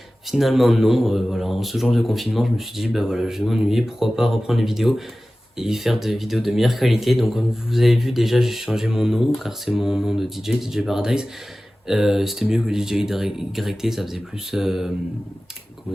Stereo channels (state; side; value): normal; both; correlation 0.96